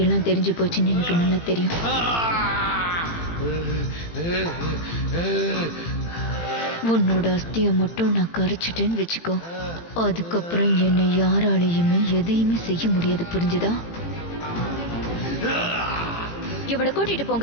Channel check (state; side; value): late; right; 18 ms